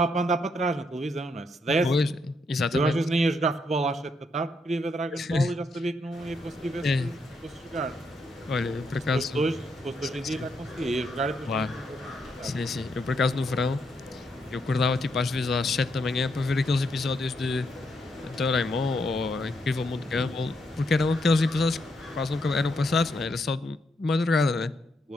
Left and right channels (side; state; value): both; normal; correlation 0.78